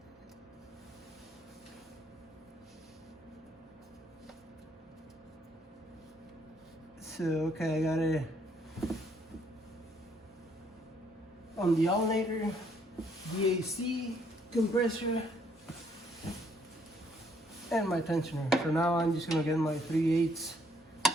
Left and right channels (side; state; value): both; normal; correlation 0.68